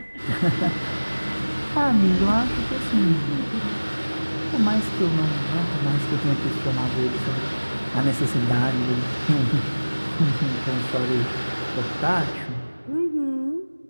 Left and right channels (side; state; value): both; inverted; correlation -1.00